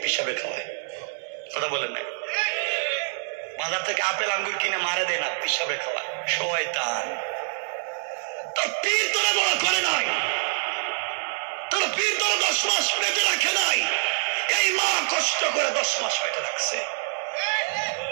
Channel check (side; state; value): left; silent; digital silence